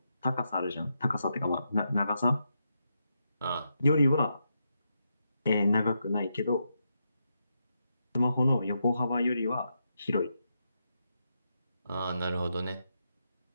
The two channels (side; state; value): both; inverted; correlation -0.83